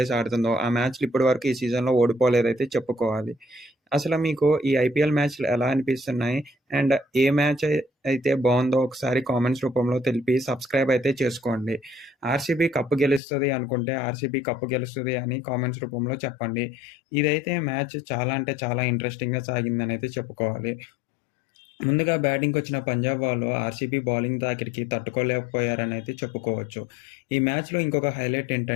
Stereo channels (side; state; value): right; drops out; at 13.2 s